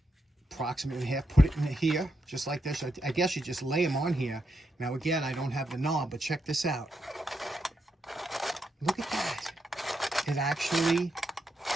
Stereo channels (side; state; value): both; normal; correlation 0.82